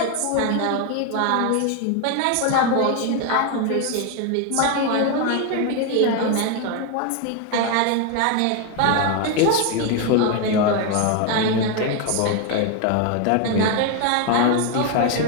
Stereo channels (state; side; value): different; both; correlation 0.01